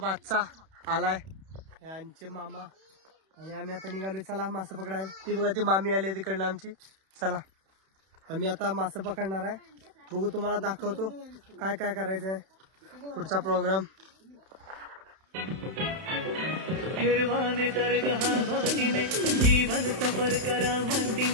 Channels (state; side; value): late; left; 31 ms